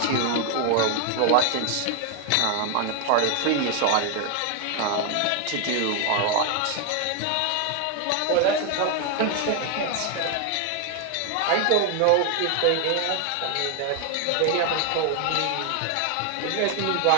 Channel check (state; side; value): different; both; correlation 0.01